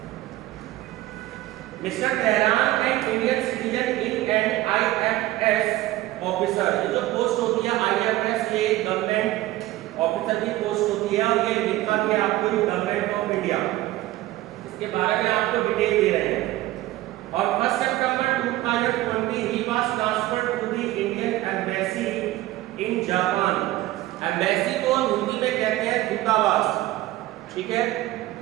Mr Tehran and Indian citizen in and IFS officer, ये जो पोस्ट होती है आईएफएस, ये गवर्नमेंट ऑफिसर की पोस्ट होती है और ये लिखा के आपको गवर्नमेंट ऑफ इंडिया, इसके बारे में आपको डिटेल दे रहे हैं। और 1 सितंबर 2020 he was transferred to the Indian embassy in Japan। Embassy को हम हिंदी में कहते हैं दूतावास, ठीक है।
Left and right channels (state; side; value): quieter; left; 16.4 dB